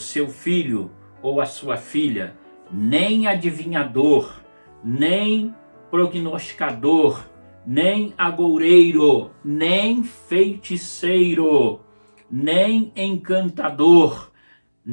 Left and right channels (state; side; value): inverted; both; correlation -1.00